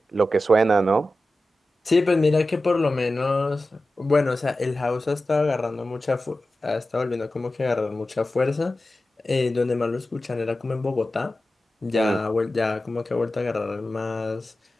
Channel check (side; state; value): both; normal; correlation 0.94